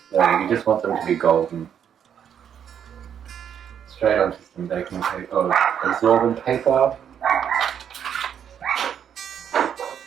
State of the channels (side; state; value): left; quieter; 8.7 dB